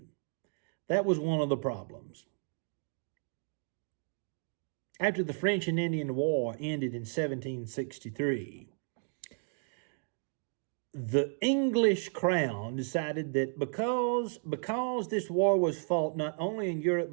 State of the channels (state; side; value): silent; left; 56 dB below the other